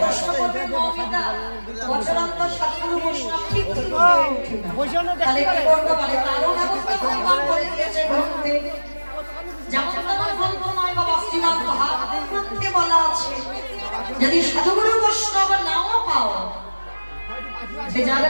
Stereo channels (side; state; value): both; inverted; correlation -1.00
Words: করবে, মৌমিতা বছরান্তর সাধুগুরু বৈষ্ণব ঠিক ঠিক উঠে না, তাহলে কি করবো? বলে তারও ব্যবস্থা ভগবান করে দিয়েছে গ্রন্থে। যেমন তেমন গ্রন্থ নয় বাবা, শ্রীমন্ত ভাগবত গ্রন্থে বলা আছে, যদি সাধুগুরু বৈষ্ণব নাও পাও, যে যার